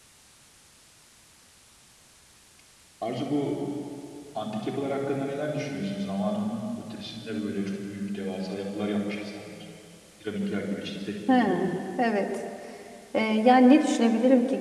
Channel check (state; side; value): identical; both; correlation 1.00